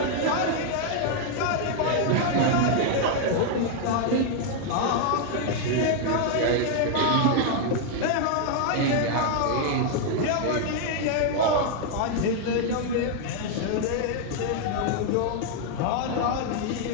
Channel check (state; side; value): different; both; correlation 0.00